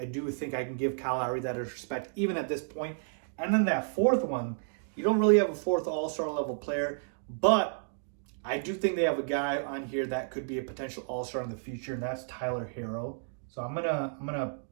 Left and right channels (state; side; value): silent; left; digital silence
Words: do think I can give Kyle Lowry that respect, even at this point. And then that fourth one, you don't really have a fourth all-star level player, but I do think they have a guy on here that could be a potential all-star in the future, and that's Tyler Hero. So I'm gonna